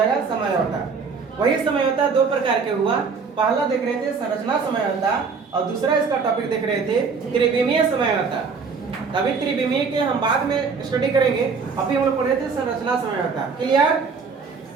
समझौता। वही समझौता 2 प्रकार के हुआ। पहला देख रहे थे संरचना समझौता, और दूसरा इसका टॉपिक देख रहे थे त्रिविमीय समझौता। अभी त्रिविमीय के हम बाद में स्टडी करेंगे, अभी हम लोग पढ़ रहे थे संरचना समझौता। क्लियर?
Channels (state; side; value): quieter; left; 5.2 dB